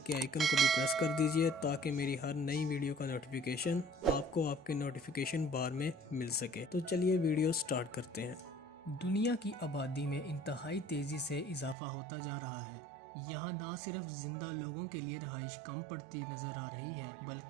کے آئیکن کو بھی پریس کر دیجئے تاکہ میری ہر نئی ویڈیو کا نوٹیفیکیشن آپ کو آپ کے نوٹیفیکیشن بار میں مل سکے۔ تو چلیے ویڈیو سٹارٹ کرتے ہیں۔ دنیا کی آبادی میں انتہائی تیزی سے اضافہ ہوتا جا رہا ہے۔ یہاں نہ صرف زندہ لوگوں کے لیے رہائش کم پڑتی نظر آ رہی ہے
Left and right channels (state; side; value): drops out; left; at 11.8 s